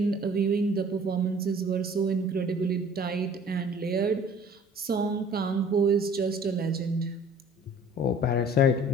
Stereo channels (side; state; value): both; normal; correlation 0.51